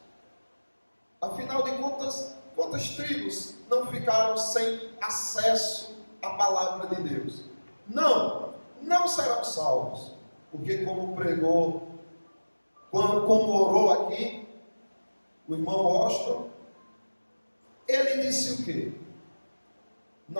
Afinal de contas, quantas tribos não ficaram sem acesso à palavra de Deus? Não serão salvos. Porque como pregou, como orou aqui o irmão Washington, ele disse o quê?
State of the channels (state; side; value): inverted; both; correlation -1.00